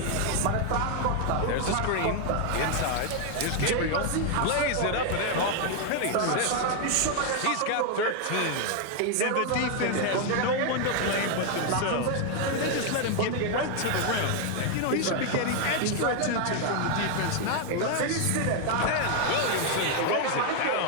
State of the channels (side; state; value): both; different; correlation 0.00